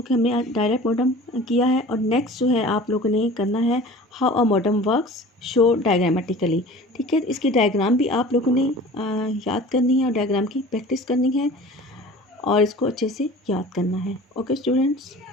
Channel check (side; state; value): both; normal; correlation 0.42